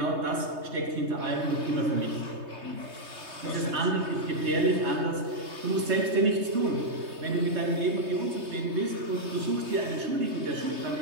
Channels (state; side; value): late; left; 3.2 ms